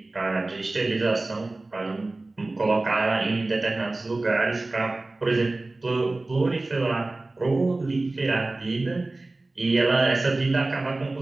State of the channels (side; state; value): left; quieter; 3.0 dB